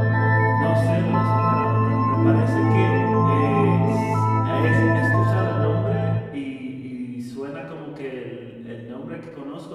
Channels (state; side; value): identical; both; correlation 1.00